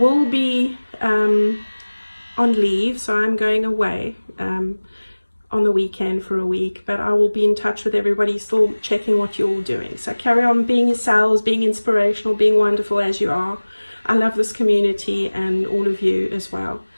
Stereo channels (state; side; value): inverted; both; correlation -1.00